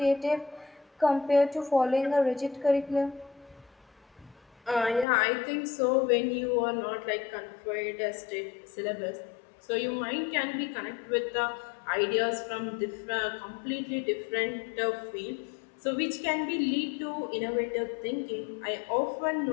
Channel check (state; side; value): drops out; right; at 5.1 s